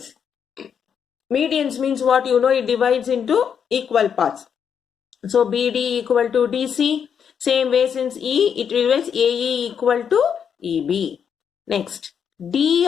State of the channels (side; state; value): right; quieter; 7.6 dB